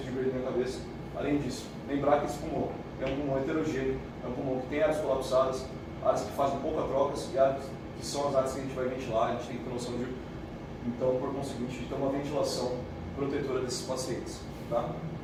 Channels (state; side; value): identical; both; correlation 1.00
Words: de Berlim na cabeça. Além disso, lembrar que esse pulmão é um pulmão heterogêneo, é um pulmão que tem áreas colapsadas, áreas que fazem pouca trocas e áreas que são as áreas que a gente vai ventilar. A gente tem que ter noção então, por conseguinte, de ter uma ventilação protetora desses pacientes. Tá?